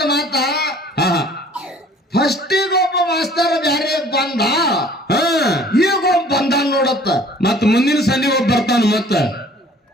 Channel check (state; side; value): normal; both; correlation 0.52